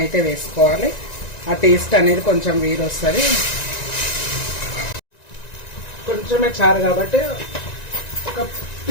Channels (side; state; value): right; late; 1.9 ms